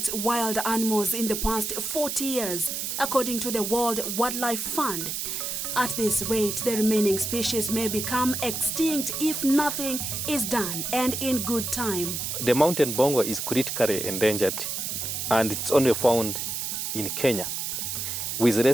wild animals in the past 40 years, according to the World Wildlife Fund. At this rate, the remaining species may become extinct if nothing is done, and in good time. The mountain bongo is critically endangered, and it's only found in Kenya, with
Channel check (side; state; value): right; noise; hiss, 3 dB below the sound